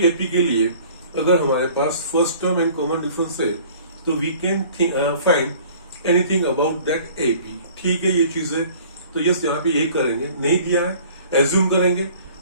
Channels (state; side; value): inverted; both; correlation -0.50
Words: एपी के लिए अगर हमारे पास first term and common difference है, तो we can find anything about that AP. ठीक है, ये चीज है। तो यस यहाँ पे ये करेंगे, नहीं दिया है एज्यूम करेंगे,